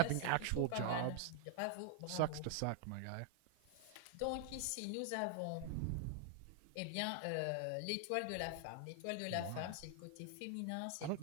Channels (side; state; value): both; different; correlation 0.00